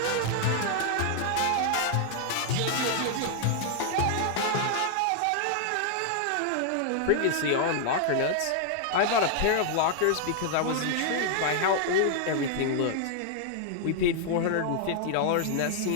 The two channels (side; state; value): both; different; correlation -0.01